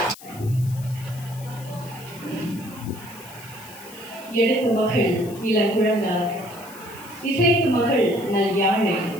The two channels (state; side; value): noise; left; hiss, 18 dB below the sound